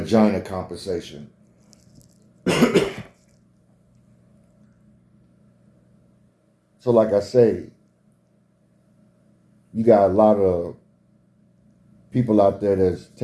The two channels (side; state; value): both; identical; correlation 1.00